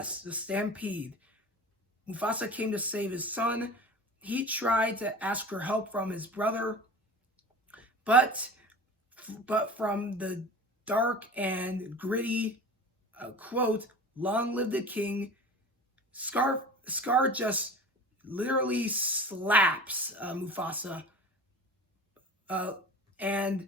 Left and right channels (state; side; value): normal; both; correlation 0.37